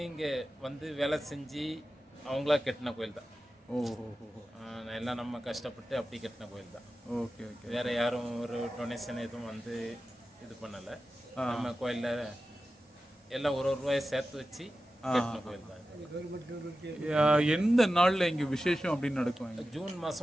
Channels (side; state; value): both; normal; correlation 0.93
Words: இங்கே வந்து வேலை செஞ்சு அவங்களா கட்டின கோயில் தான். ஓஹோ. எல்லாம் நம்ம கஷ்டப்பட்டு அப்படி கட்டின கோயில் தான். Okay okay. வேற யாரும் ஒரு டொனேஷன் எதுவும் வந்து இது பண்ணலை. நம்ம கோயிலில் எல்லாம் ஒரு ரூபாயை சேர்த்து வச்சு கட்டின கோயில் தான். எந்த நாளில் இங்கே விசேஷம் அப்படின்னு நடக்கும்? ஜூன்